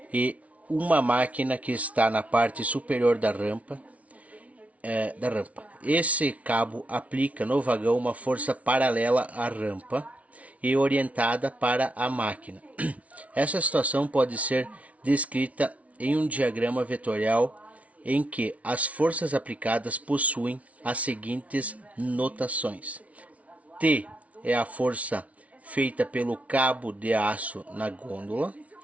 e uma máquina que está na parte superior da rampa. Esse cabo aplica no vagão uma força paralela à rampa e orientada para a máquina. Essa situação pode ser descrita em um diagrama vetorial em que as forças aplicadas possuem as seguintes notações. T é a força feita pelo cabo de aço na gôndola.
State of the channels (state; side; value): late; left; 0.067 ms